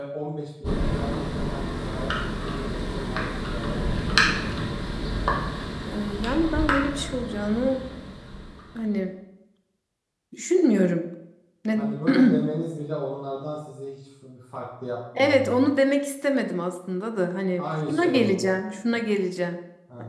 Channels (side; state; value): both; identical; correlation 1.00